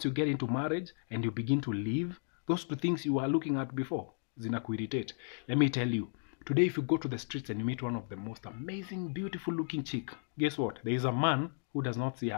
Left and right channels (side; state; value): right; silent; 55 dB below the other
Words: you get into marriage and you begin to live, those two things you were looking at before, zinakuirritate. Let me tell you, today if you go to the streets and you meet one of the most amazing, beautiful looking chick, guess what? There is a man who does not see